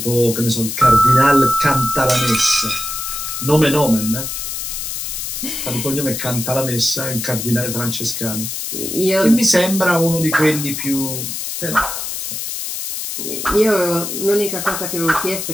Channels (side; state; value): left; noise; hiss, 5 dB below the sound